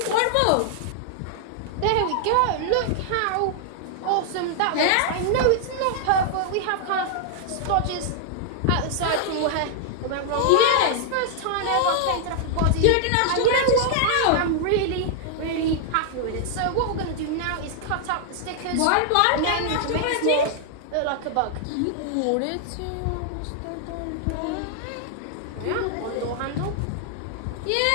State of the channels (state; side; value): different; both; correlation 0.00